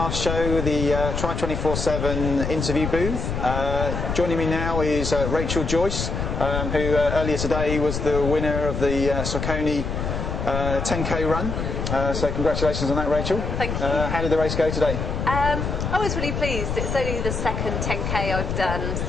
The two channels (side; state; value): left; noise; rumble, 3 dB below the sound